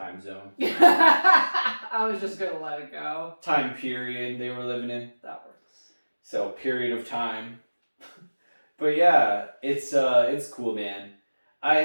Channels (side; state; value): both; inverted; correlation -1.00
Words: zone. I was just gonna let it go. Time period they were living in. That works. So period of time. But yeah, it's cool, man. I